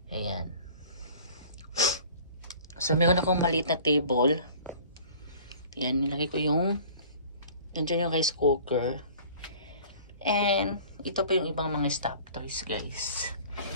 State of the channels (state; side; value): inverted; both; correlation -0.47